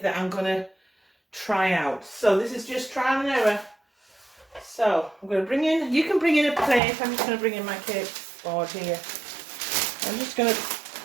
that I'm going to try out. So this is just trial and error. So I'm going to bring in, you can bring in a plate. I'm just going to bring in my cake board here. I'm just going to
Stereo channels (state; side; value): drops out; left; at 6.8 s